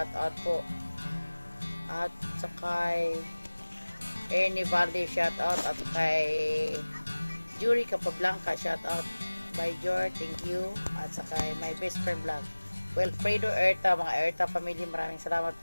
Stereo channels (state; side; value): inverted; both; correlation -1.00